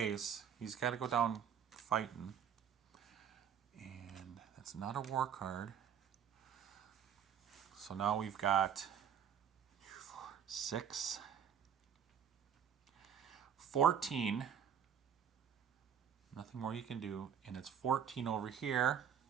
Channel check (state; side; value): quieter; left; 8.4 dB